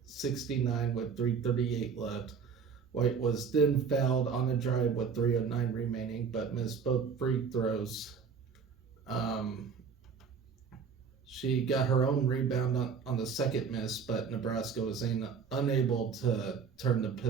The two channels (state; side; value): quieter; left; 6.1 dB